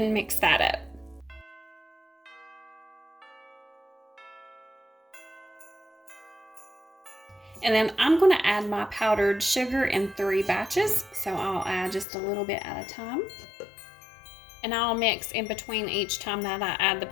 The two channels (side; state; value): right; drops out; at 12.1 s